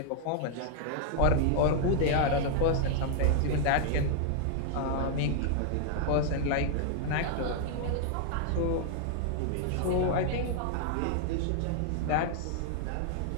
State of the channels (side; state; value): both; different; correlation 0.00